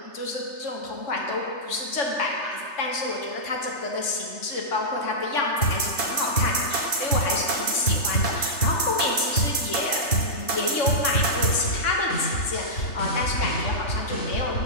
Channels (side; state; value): right; late; 3.3 ms